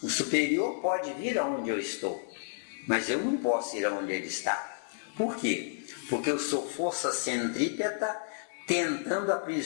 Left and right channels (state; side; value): silent; right; digital silence